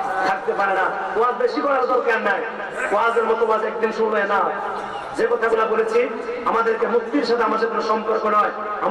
থাকতে পারে না। ওয়াজ বেশি করার দরকার নাই, ওয়াজের মতো ওয়াজ একদিন শুনবে না। যে কথাগুলো বলেছি, আমাদেরকে মুক্তির সাথে আমাদের কোনো সম্পর্ক নয়,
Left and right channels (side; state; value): both; identical; correlation 1.00